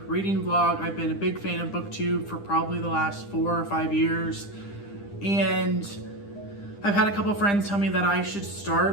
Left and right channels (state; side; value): late; right; 9.9 ms